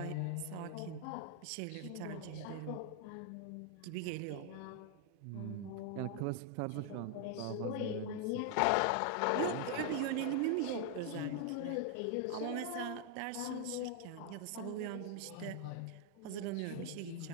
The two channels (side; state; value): both; different; correlation 0.00